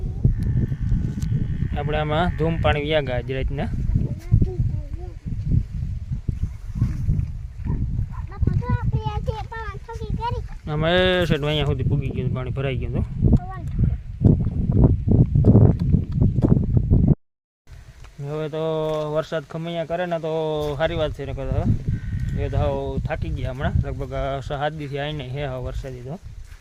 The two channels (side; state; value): both; identical; correlation 1.00